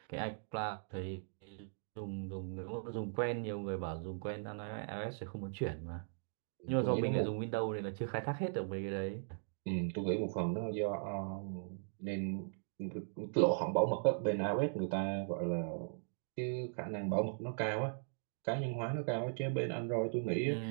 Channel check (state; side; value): silent; left; digital silence